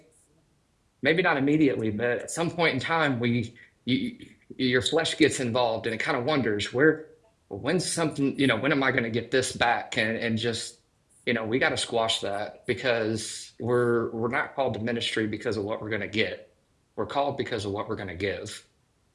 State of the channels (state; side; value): identical; both; correlation 1.00